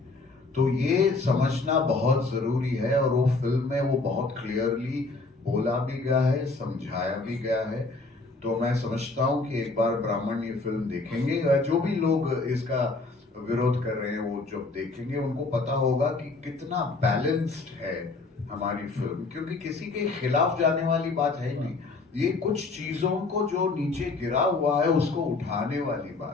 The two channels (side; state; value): right; quieter; 3.6 dB